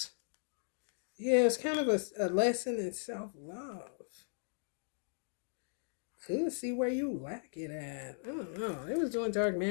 Yeah, it's kind of a lesson in self-love. Could see where you lack it at. I don't know. They was doing dark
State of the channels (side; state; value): right; silent; digital silence